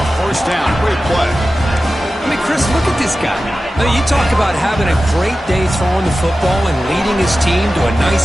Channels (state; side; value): normal; both; correlation 0.94